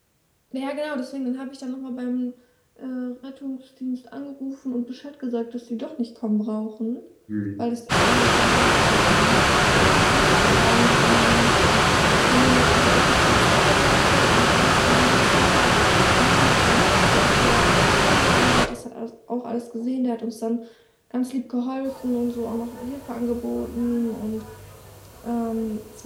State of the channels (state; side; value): identical; both; correlation 1.00